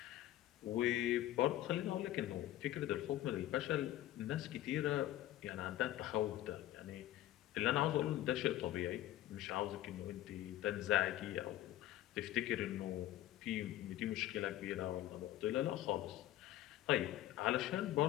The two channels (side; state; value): right; quieter; 13.9 dB